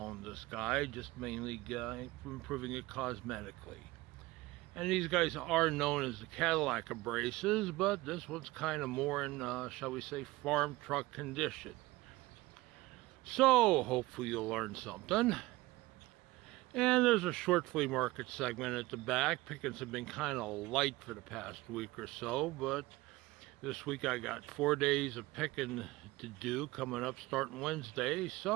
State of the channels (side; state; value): left; quieter; 19.6 dB